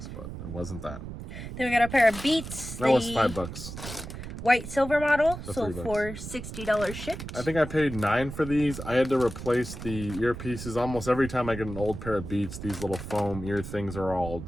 but it wasn't that. Then we got a pair of Beats. That was $5. White silver model sold for $60 shipped. I think I paid $9 for these. I had to replace the earpieces. Almost every time I get an old pair of Beats, these little foam ear things are all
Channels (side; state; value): right; noise; rumble, 9 dB below the sound